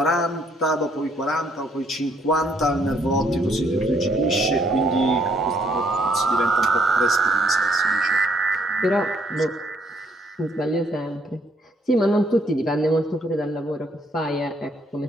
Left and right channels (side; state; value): both; normal; correlation 0.68